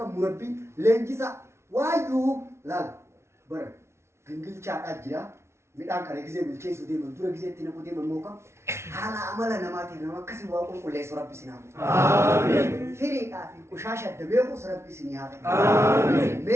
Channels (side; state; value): left; late; 0.13 ms